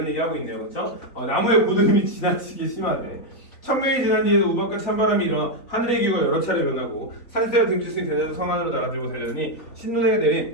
얘기하고 있네요, 그렇죠? 나무의 고드름이 지나치게 심하대. 천명이 지난 뒤에도 우박과 찬바람이 일어나 하늘의 기후가 여러 차례 변하고 산새와 등지승이 대대로 성 안으로 나가들고 달려니 신눈에게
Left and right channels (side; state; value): right; late; 3.9 ms